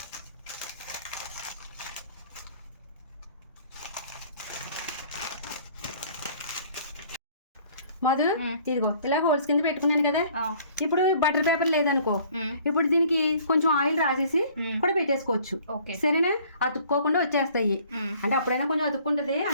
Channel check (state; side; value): inverted; both; correlation -0.55